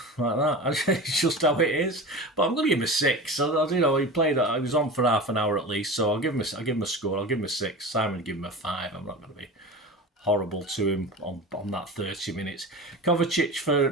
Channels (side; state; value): both; normal; correlation 0.30